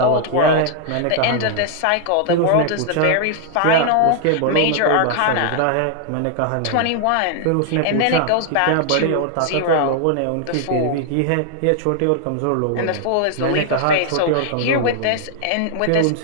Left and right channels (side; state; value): both; different; correlation 0.00